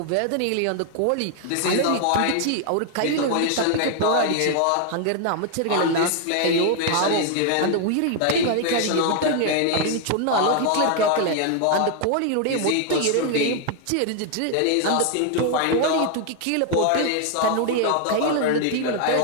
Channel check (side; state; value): both; different; correlation 0.00